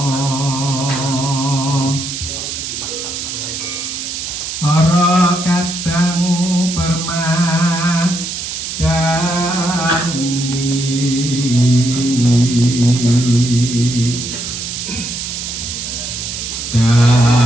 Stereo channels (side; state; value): right; noise; hiss, 6 dB below the sound